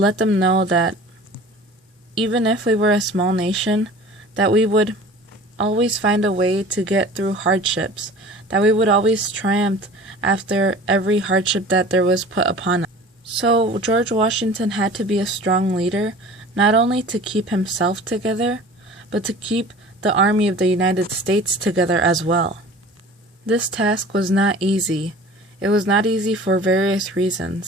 them know that even if we were a small nation, that we would always find a way to get through hardships, that we would always triumph after every hardship that there was put upon us. So George Washington had to be a strong leader, not only to keep himself together, but to keep the army of the United States together as well. This task was not easy. It was not easy for various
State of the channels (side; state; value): both; normal; correlation 0.42